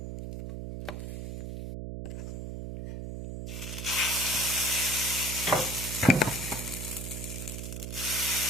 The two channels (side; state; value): right; noise; hum, 6 dB below the sound